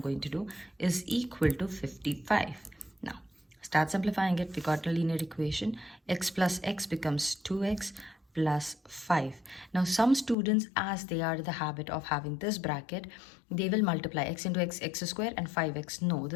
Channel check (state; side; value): drops out; right; at 10.4 s